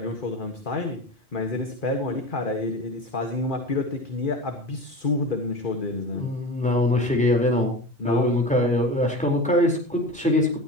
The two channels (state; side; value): normal; both; correlation 0.30